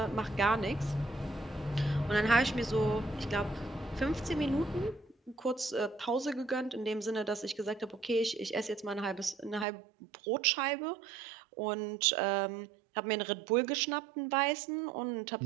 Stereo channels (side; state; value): left; drops out; at 9.7 s